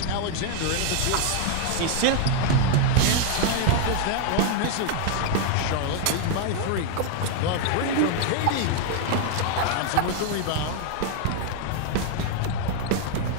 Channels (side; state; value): both; different; correlation 0.00